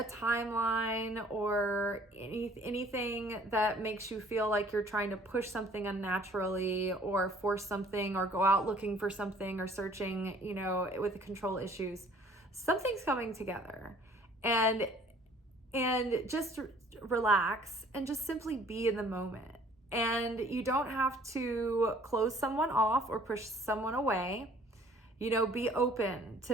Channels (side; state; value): both; normal; correlation 0.55